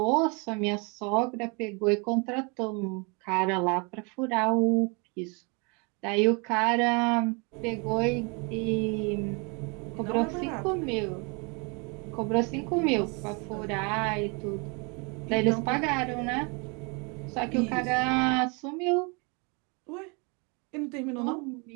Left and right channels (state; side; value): quieter; left; 32.0 dB